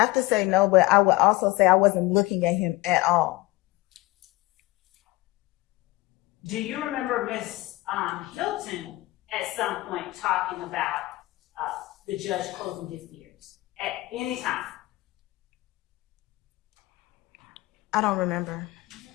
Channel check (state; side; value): quieter; right; 19.9 dB